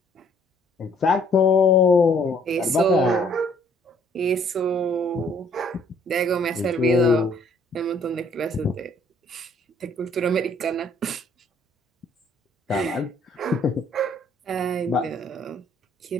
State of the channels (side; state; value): both; normal; correlation 0.62